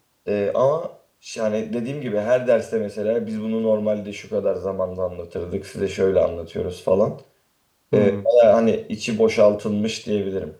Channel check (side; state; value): both; identical; correlation 1.00